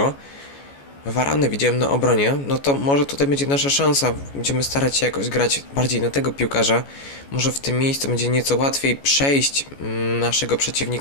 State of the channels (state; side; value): late; right; 14 ms